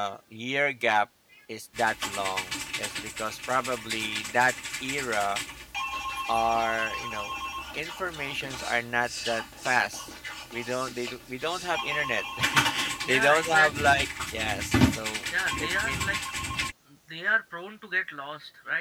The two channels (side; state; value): both; identical; correlation 1.00